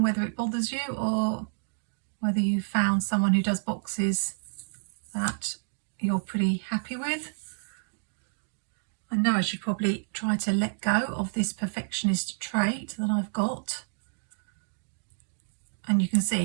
whether it bothers you, or whether you found someone who does boxes that you're pretty happy with. I know I should probably try to let go of this perfectionist trait that I've got. And you can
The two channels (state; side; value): silent; left; digital silence